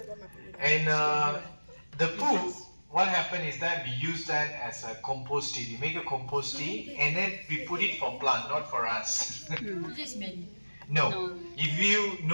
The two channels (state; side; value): inverted; both; correlation -1.00